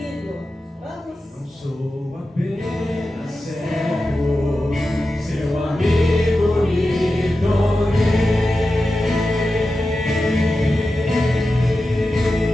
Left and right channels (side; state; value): both; normal; correlation 0.92